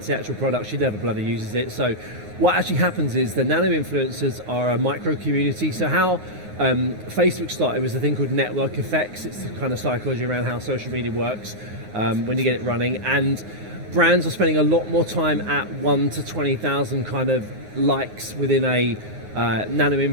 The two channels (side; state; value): left; late; 9.5 ms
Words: to the actual product. She never bloody uses it. So what actually happens is the nano-influencers are a micro community. So how Facebook started was a thing called network effects. It's the kind of psychology around how social media works when you get it running. And brands are spending a lot more time at 1 to 20,000 kind of likes within a